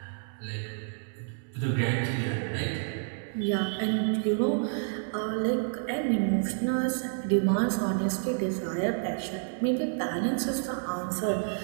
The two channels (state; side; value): silent; left; digital silence